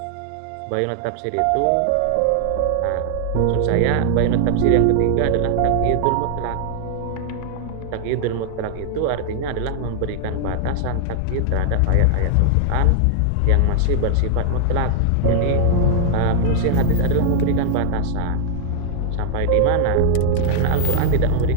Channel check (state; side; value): different; both; correlation 0.00